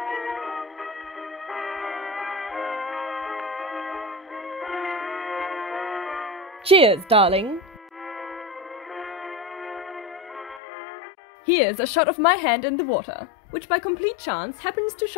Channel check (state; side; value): drops out; right; at 10.6 s